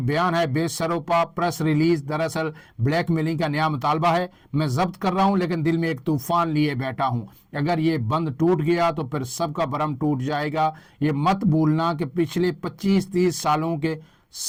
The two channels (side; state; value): both; identical; correlation 1.00